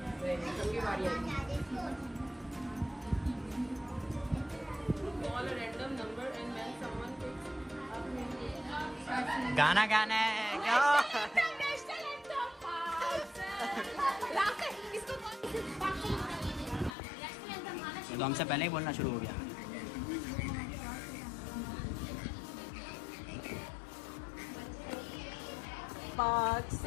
गाना गाना है क्या? तो हमसे पहले ही बोलना शुरू हो गया।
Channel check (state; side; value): drops out; right; at 16.9 s